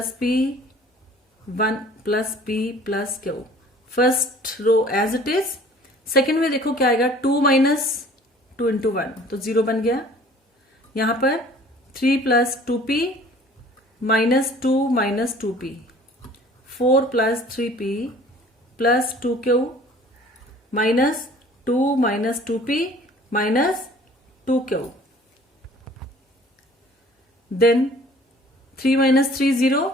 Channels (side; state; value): both; normal; correlation 0.51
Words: P 1 plus P plus Q। First row as it is. Second में देखो क्या आएगा, 2 माइनस 2 इंटू 1 तो 0 बन गया। यहां पर 3 plus 2P minus 2 minus 2P, 4 plus 3P plus 2Q minus 2 minus 2P minus 2Q, then 3 minus 3 0,